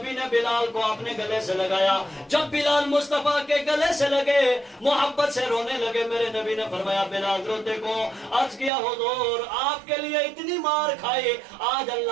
ने बिलाल को अपने गले से लगाया। जब बिलाल मुस्तफा के गले से लगे, मोहब्बत से रोने लगे, मेरे नबी ने फरमाया बिलाल रो देखो। अर्ज किया हुजूर आपके लिए इतनी मार खाई, आज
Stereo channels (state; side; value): drops out; left; at 8.7 s